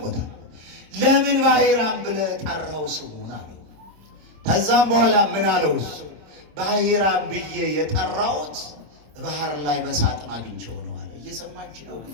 ለምን ባሕራም ብለህ ጠራው ስሙን አለው። ከዛም በኋላ ምን አለው? እሱ ባሕራም ብዬ የጠራሁት ባህር ላይ በሳጥን አግኝቼው ነው አለ። እየሰማችሁ ነው?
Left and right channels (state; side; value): late; left; 27 ms